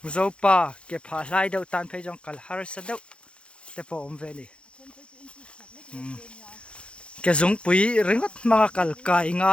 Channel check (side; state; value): right; late; 0.057 ms